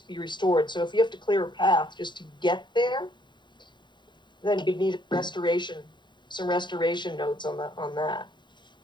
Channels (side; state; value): right; late; 0.22 ms